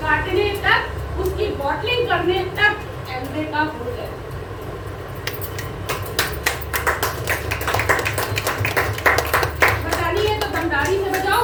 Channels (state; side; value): identical; both; correlation 1.00